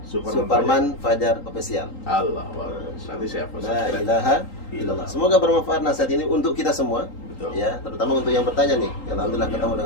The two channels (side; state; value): right; late; 3.8 ms